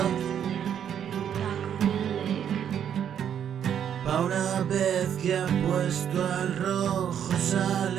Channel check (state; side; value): quieter; left; 9.0 dB